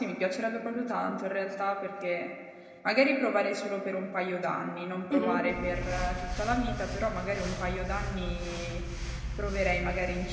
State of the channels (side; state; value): both; identical; correlation 1.00